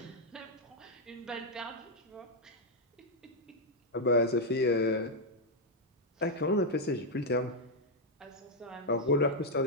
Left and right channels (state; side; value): normal; both; correlation -0.02